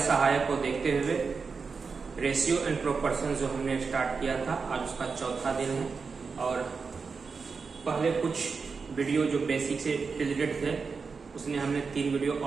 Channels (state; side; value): quieter; left; 5.0 dB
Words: को देखते हुए रेशियो एंड प्रोपोर्शन जो हमने स्टार्ट किया था, आज उसका चौथा दिन है। और पहले कुछ वीडियो जो बेसिक से रिलेटेड थे उसने हमने 3 वीडियो